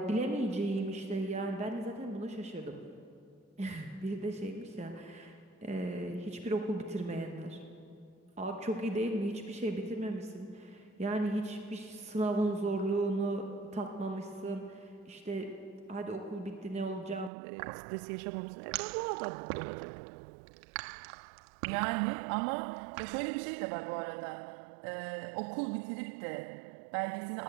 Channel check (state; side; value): drops out; left; at 17.3 s